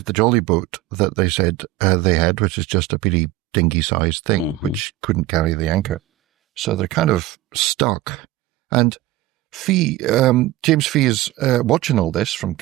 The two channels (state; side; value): quieter; left; 15.8 dB